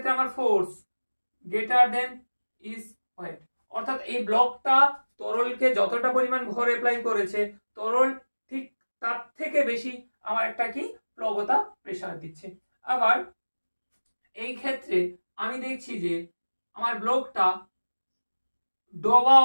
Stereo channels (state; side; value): inverted; both; correlation -1.00